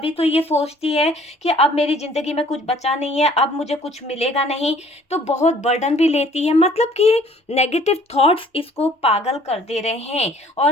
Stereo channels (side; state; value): both; normal; correlation 0.56